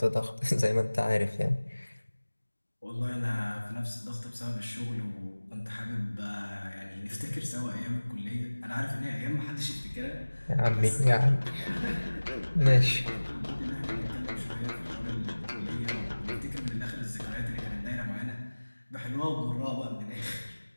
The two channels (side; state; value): both; inverted; correlation -1.00